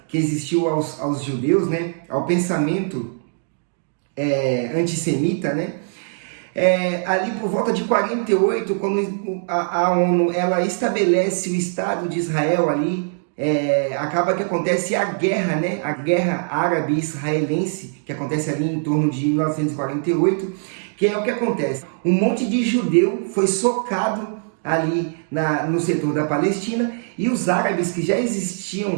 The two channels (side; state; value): left; silent; digital silence